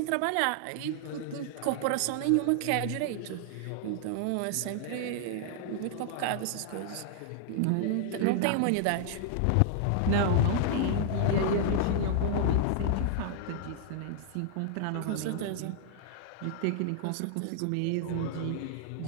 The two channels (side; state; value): both; different; correlation -0.01